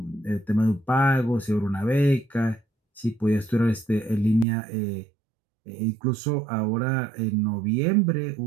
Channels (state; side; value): drops out; left; at 4.5 s